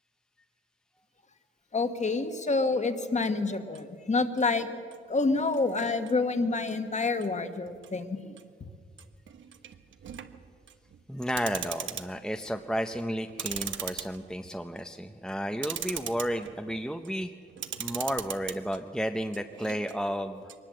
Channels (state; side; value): normal; both; correlation 0.58